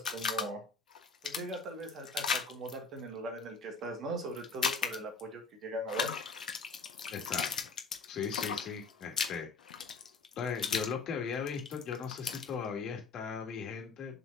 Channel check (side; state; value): right; quieter; 4.3 dB